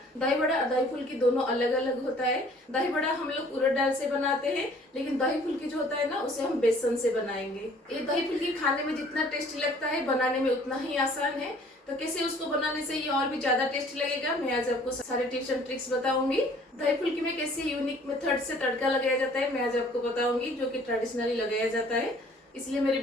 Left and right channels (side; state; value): both; normal; correlation 0.55